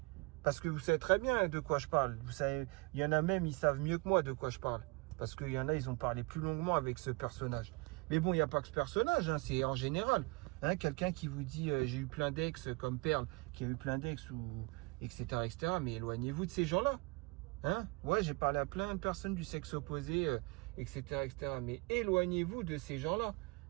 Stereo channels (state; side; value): quieter; left; 26.8 dB